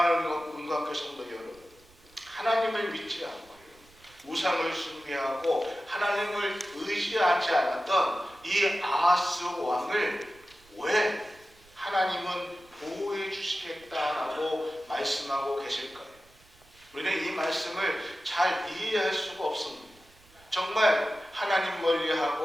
문광교 성도 여러분, 하나님을 믿지 않고 우상을 숭배하고 하나님을 의지하지 않았던 이 아하스 왕을 왜 하나님은 보호해 주시겠다라고 말씀하고 계실까요? 우리는 이 말씀을 잘 이해할 수가 없습니다. 정말 하나님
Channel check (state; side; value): noise; right; rumble, 28 dB below the sound